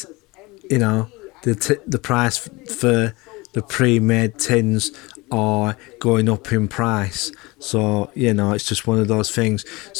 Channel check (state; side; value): quieter; right; 23.6 dB